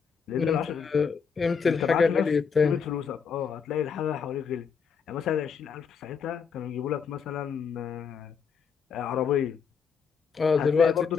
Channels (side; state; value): right; quieter; 6.2 dB